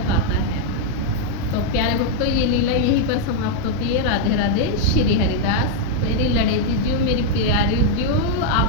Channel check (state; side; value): normal; both; correlation -0.01